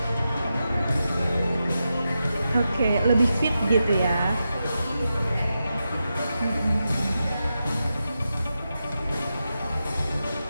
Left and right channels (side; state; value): both; inverted; correlation -0.89